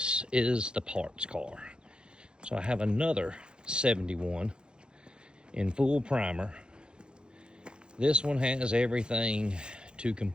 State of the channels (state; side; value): late; left; 0.050 ms